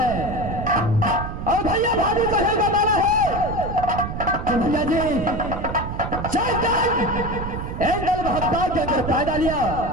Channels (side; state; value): right; noise; rumble, 6 dB below the sound